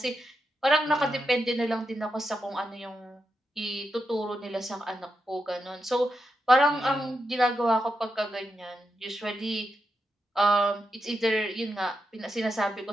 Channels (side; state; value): both; normal; correlation 0.86